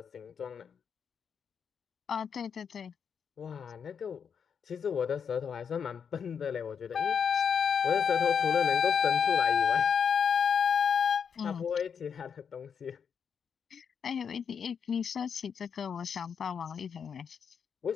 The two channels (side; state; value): right; quieter; 7.0 dB